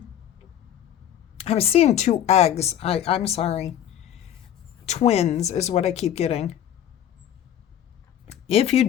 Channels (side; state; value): right; quieter; 10.5 dB